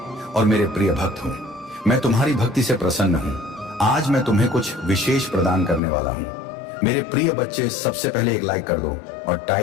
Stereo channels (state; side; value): drops out; right; at 5.8 s